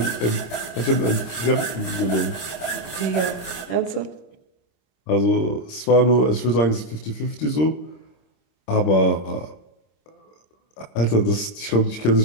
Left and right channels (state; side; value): late; right; 26 ms